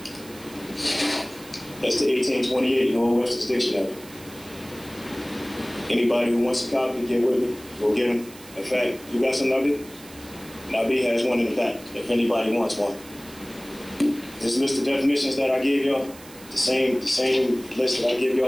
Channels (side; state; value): right; noise; hiss, 20 dB below the sound